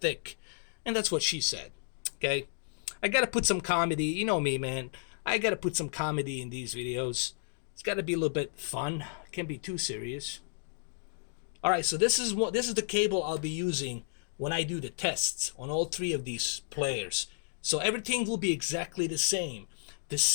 thick. And that's what she said, okay? I gotta put some comedy, you know me, man. I gotta put some comedy in these videos. It's gotta be a little bit fun. It can't be too serious. Alright, so this is the cable I'll be using when I do the tests on all three of these players. So everything will be exactly the same. The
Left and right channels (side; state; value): right; silent; digital silence